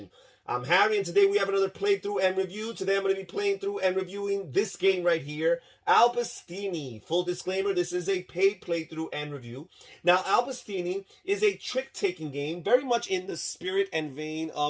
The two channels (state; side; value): identical; both; correlation 1.00